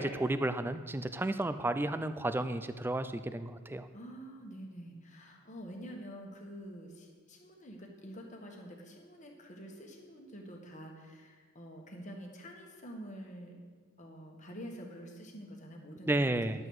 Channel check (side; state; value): both; normal; correlation 0.77